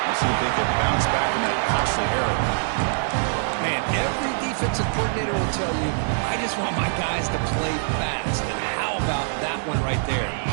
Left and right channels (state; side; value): silent; left; digital silence